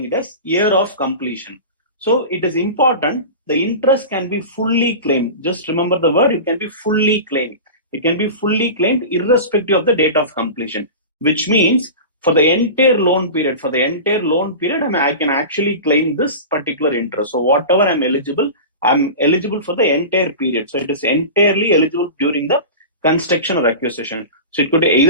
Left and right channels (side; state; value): both; inverted; correlation -0.31